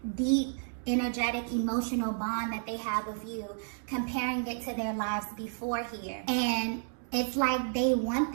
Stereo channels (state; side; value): silent; left; digital silence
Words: deep, energetic, emotional bond that they have with you, comparing it to their lives before here. And it's like they want